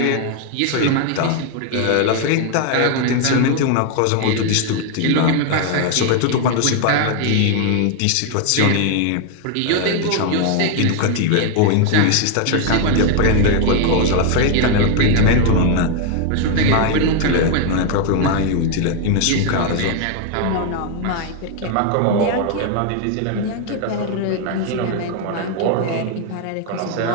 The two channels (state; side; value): different; both; correlation 0.00